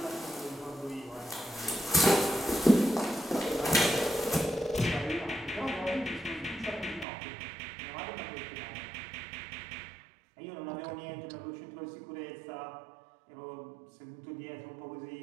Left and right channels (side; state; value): left; drops out; at 7.1 s